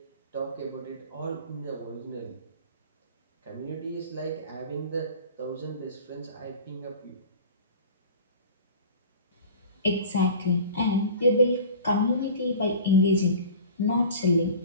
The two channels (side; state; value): both; inverted; correlation -0.39